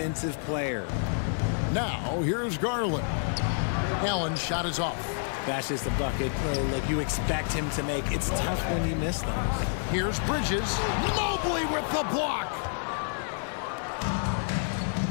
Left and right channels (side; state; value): right; silent; 59 dB below the other